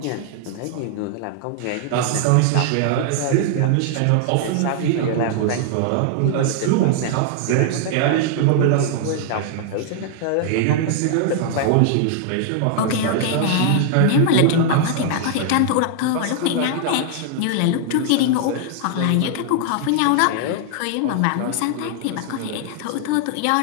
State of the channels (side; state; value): both; different; correlation -0.01